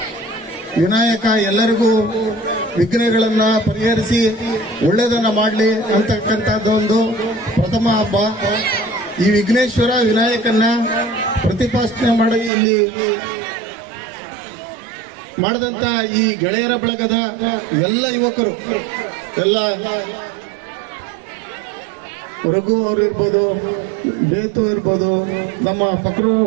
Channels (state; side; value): drops out; left; at 12.5 s